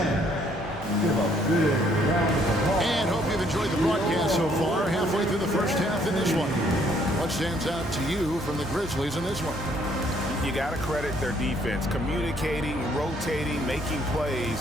And hope you've enjoyed the broadcast so far. Halfway through the first half in this one. What stands out to you from the Grizzlies in this one? you got to credit their defense, communicating, rotating, making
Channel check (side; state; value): both; normal; correlation 0.65